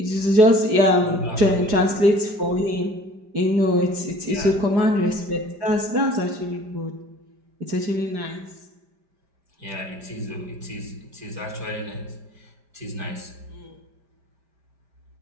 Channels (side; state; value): left; late; 5.0 ms